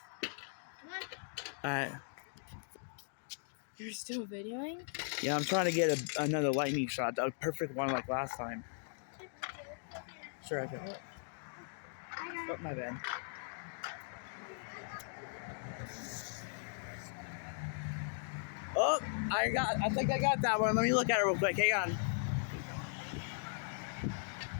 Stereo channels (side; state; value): right; silent; digital silence